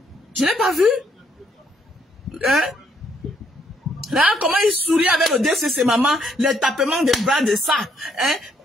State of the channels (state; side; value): normal; both; correlation 0.71